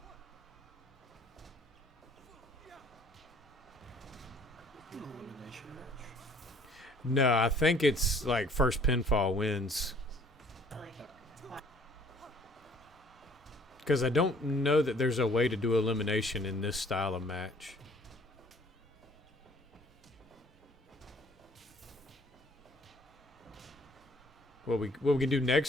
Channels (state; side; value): normal; both; correlation 0.57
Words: Elimination match. No, I think it's like first pinfall wins. Because I don't know that there's a way to do elimination in this style of match. What we can do